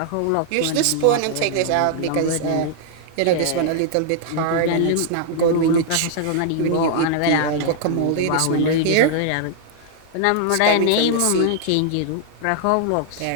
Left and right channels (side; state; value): both; different; correlation -0.01